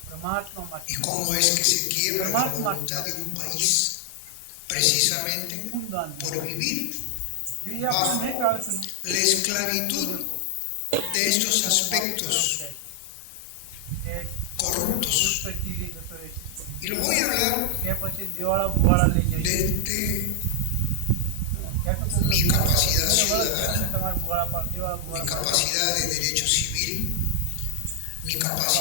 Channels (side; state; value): both; different; correlation 0.00